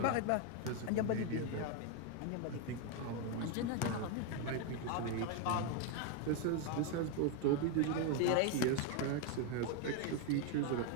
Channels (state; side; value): different; both; correlation 0.01